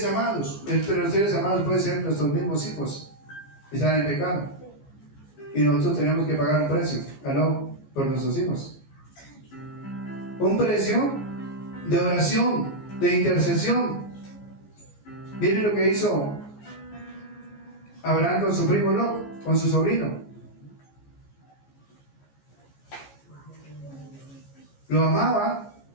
amados? Entre los seres amados pueden ser nuestros mismos hijos. Están en pecado. Y nosotros tenemos que pagar un precio, ¿aló? Por nuestros hijos. Un precio de oración, de intercesión. Miren lo que hizo Abraham con su primo Lot, con su sobrino. Lo amaba,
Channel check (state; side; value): late; right; 14 ms